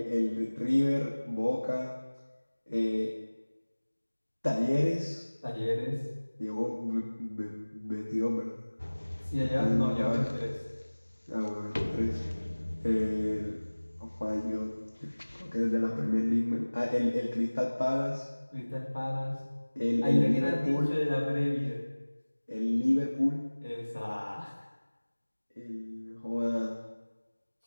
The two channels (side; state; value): both; inverted; correlation -1.00